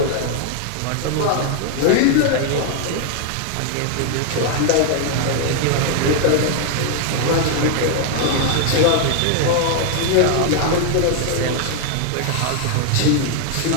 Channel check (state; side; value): different; both; correlation 0.00